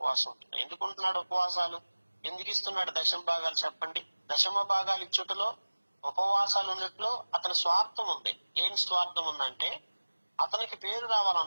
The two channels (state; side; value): inverted; both; correlation -1.00